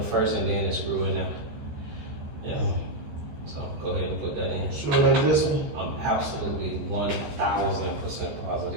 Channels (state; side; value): late; left; 14 ms